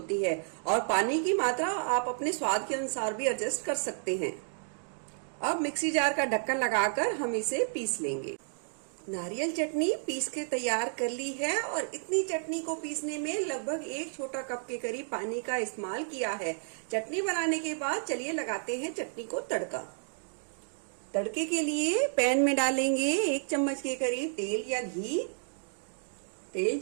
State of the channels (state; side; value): silent; left; digital silence